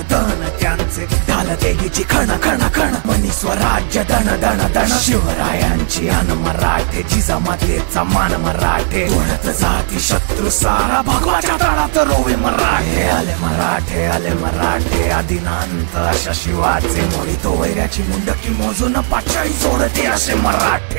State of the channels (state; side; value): silent; left; digital silence